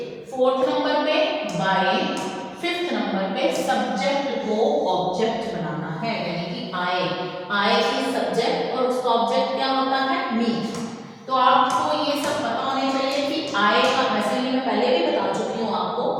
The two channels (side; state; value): both; identical; correlation 1.00